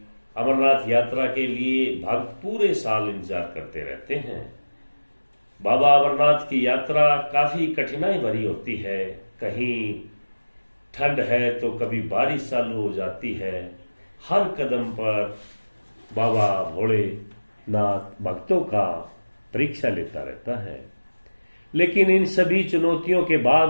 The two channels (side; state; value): both; inverted; correlation -1.00